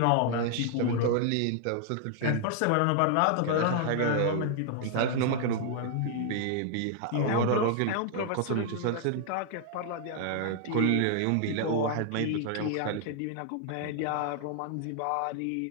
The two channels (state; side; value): different; both; correlation 0.00